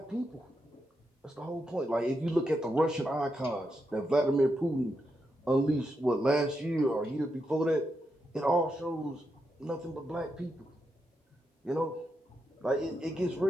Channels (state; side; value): normal; both; correlation 0.84